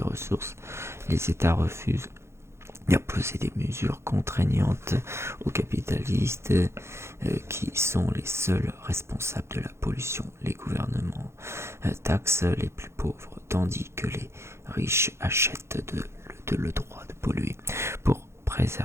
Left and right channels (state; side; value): late; left; 0.13 ms